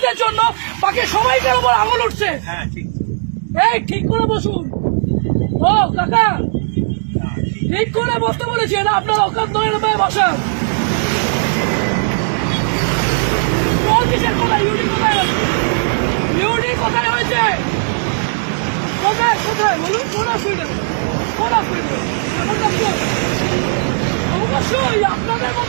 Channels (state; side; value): silent; left; digital silence